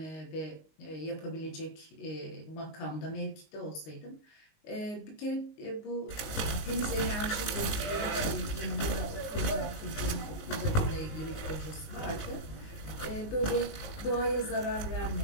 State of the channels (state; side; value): late; right; 19 ms